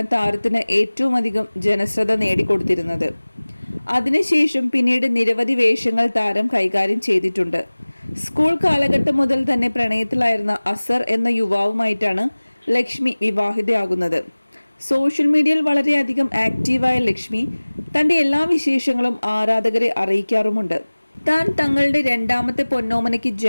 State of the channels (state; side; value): inverted; both; correlation -1.00